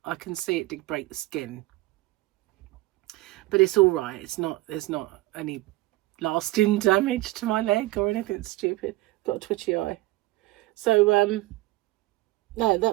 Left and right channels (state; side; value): quieter; left; 18.8 dB